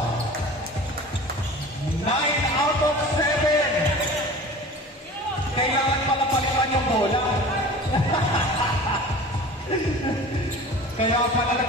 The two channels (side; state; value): both; normal; correlation 0.39